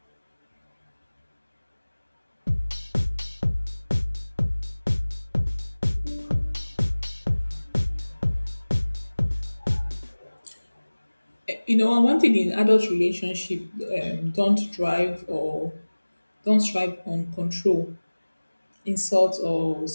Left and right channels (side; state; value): both; inverted; correlation -1.00